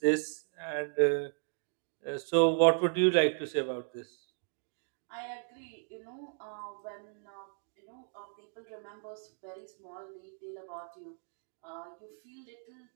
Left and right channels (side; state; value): left; silent; 54 dB below the other